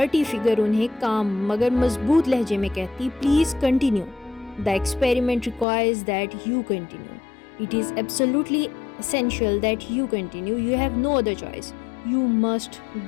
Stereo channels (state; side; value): drops out; right; at 5.7 s